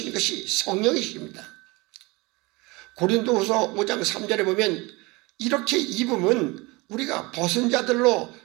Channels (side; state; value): left; quieter; 24.3 dB